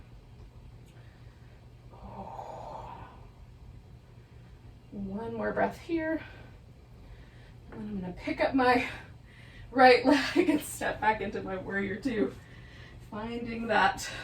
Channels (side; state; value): both; identical; correlation 1.00